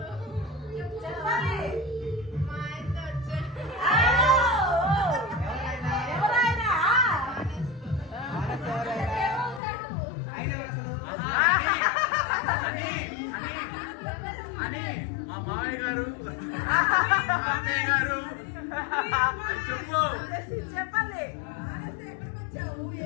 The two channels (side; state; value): right; drops out; at 9.6 s